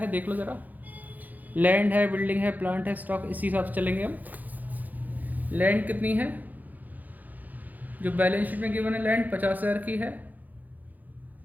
देख लो ज़रा, लैंड है, बिल्डिंग है, प्लांट है, स्टॉक, इसी हिसाब से चलेंगे हम। लैंड कितनी है, जो बैलेंस शीट में गिवन है लैंड 50,000 की है,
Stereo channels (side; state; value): left; late; 0.082 ms